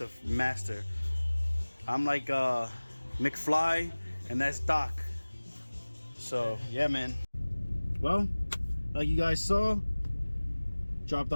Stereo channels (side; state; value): both; inverted; correlation -1.00